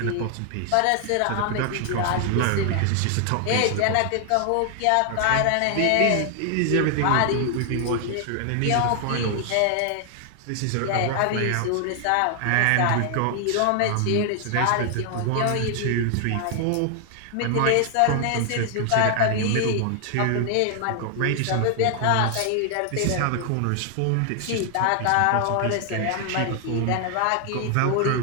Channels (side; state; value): both; different; correlation 0.00